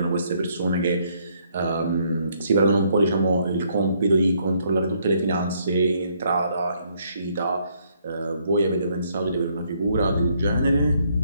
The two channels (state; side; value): inverted; both; correlation -0.70